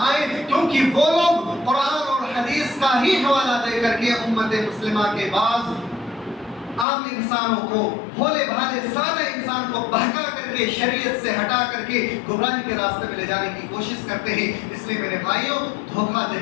آئے، کیونکہ وہ لوگ قرآن اور حدیث کا ہی حوالہ دے کر کے امت مسلمہ کے بعض عام انسانوں کو، بھولے بھالے سادہ انسان کو بہکا کر کے شریعت سے ہٹا کر کے گمراہی کے راستے میں لے جانے کی کوشش کرتے ہیں. اس لیے میرے بھائیوں، دھوکہ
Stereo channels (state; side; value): drops out; right; at 6.9 s